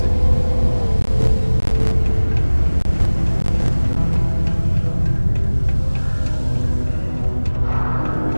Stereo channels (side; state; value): both; inverted; correlation -1.00